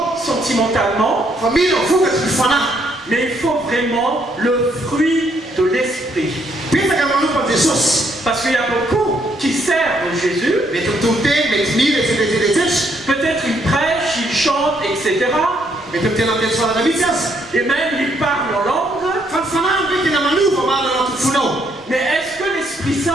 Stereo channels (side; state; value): both; normal; correlation 0.71